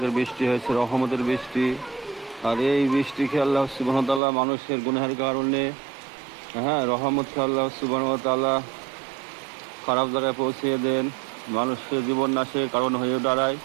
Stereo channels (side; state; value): left; drops out; at 4.2 s